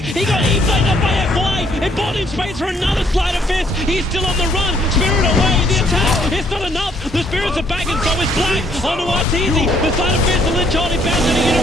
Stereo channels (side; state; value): both; normal; correlation 0.66